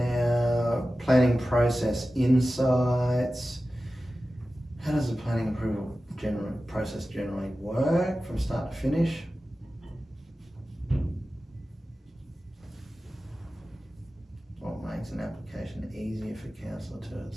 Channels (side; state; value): both; normal; correlation 0.94